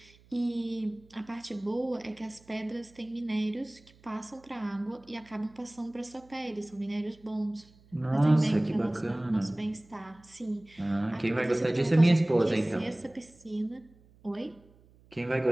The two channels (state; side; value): noise; right; hum, 28 dB below the sound